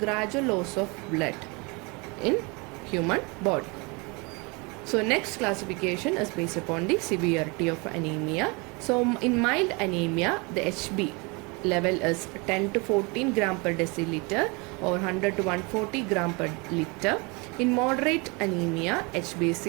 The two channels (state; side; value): quieter; left; 28.8 dB